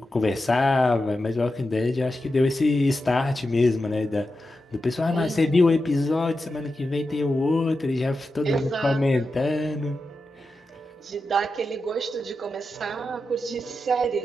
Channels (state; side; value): normal; both; correlation 0.90